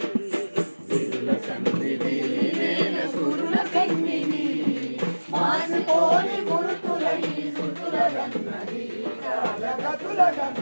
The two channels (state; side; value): inverted; both; correlation -1.00